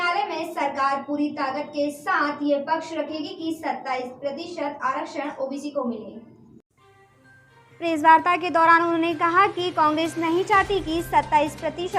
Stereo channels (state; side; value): identical; both; correlation 1.00